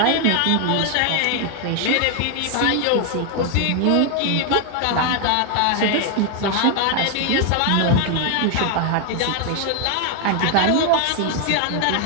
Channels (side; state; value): both; different; correlation 0.00